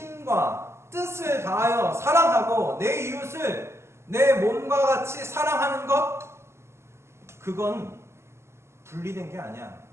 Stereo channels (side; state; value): left; late; 0.13 ms